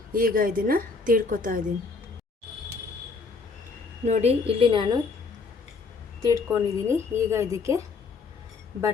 ಈಗ ಇದನ್ನು ತೀಡ್ಕೊತಾ ಇದ್ದೀನಿ. ನೋಡಿ ಇಲ್ಲಿ ನಾನು ತೀಡ್ಕೊಂಡಿದ್ದೀನಿ. ಈಗ ಇದಕ್ಕೆ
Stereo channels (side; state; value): right; quieter; 4.4 dB